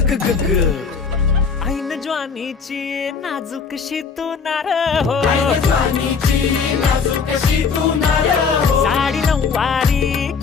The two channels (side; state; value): right; quieter; 5.6 dB